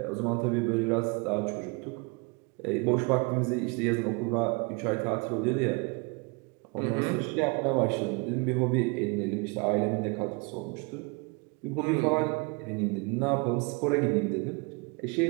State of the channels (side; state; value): left; quieter; 30.0 dB